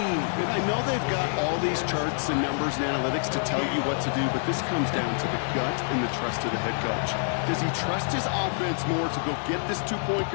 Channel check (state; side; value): silent; right; digital silence